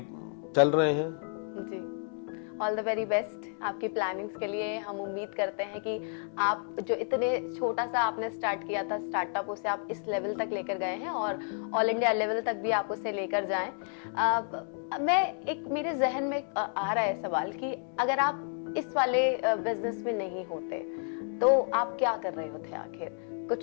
चल रहे हैं। जी। ऑल द वेरी बेस्ट आपकी प्लानिंग्स के लिए। हम उम्मीद करते हैं कि आप जो इतने छोटा सा आपने स्टार्ट किया था स्टार्टअप, उसे आप इस लेवल तक लेकर गए हैं, और ऑल इंडिया लेवल तक भी आप उसे लेकर जाएं। मेरे जहन में आ रहा है सवाल कि अगर आप इस वाले बिजनेस में नहीं होते तो आप क्या कर रहे होते आखिर?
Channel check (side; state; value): right; silent; 57 dB below the other